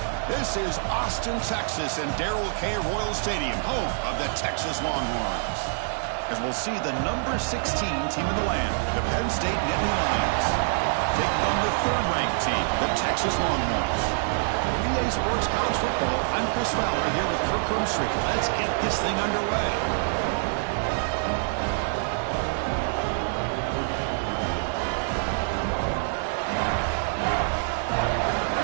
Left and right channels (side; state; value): left; silent; digital silence